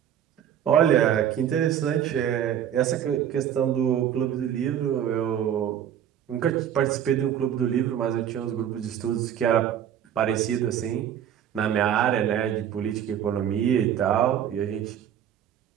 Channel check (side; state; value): left; quieter; 9.9 dB